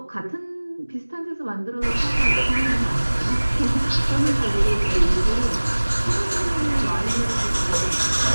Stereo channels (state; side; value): inverted; both; correlation -1.00